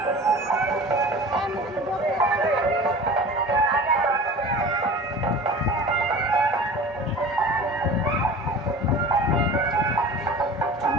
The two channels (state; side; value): normal; both; correlation 0.38